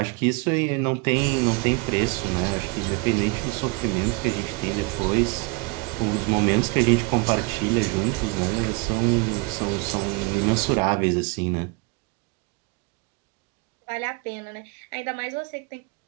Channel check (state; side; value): quieter; left; 27.2 dB